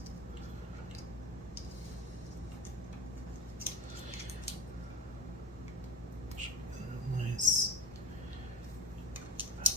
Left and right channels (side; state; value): both; normal; correlation 0.30